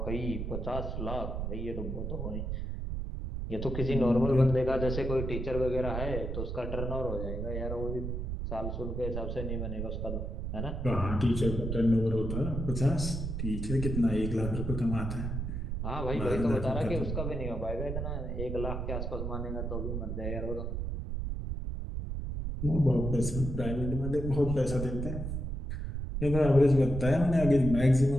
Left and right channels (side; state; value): right; noise; rumble, 3 dB below the sound